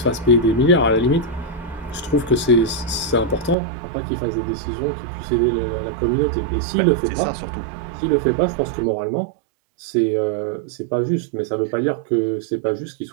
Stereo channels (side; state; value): left; drops out; at 3.6 s